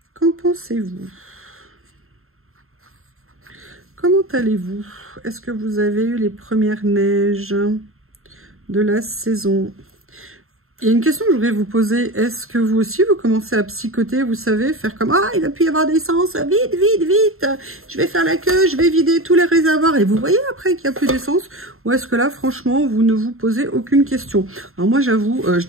Qu'en pensez-vous? Comment allez-vous? Est-ce que vous avez eu les premières neiges de la saison? Il y a une question que je voudrais vous poser. Est-ce que vous aussi, vous commencez à psychoter, vous savez, faire comme « Ah, il va plus y avoir d'essence, vite, vite, vite, je vais faire la queue, je vais vider tous les réservoirs. » Et vous voyez après qu'il n'y a plus d'essence? Ou est-ce que là, franchement, vous ne vous posez aucune question? Alors moi, j'avoue,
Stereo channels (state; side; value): late; left; 0.62 ms